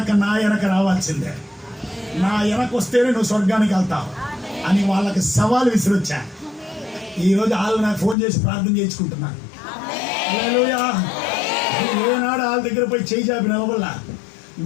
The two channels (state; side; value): drops out; right; at 8.2 s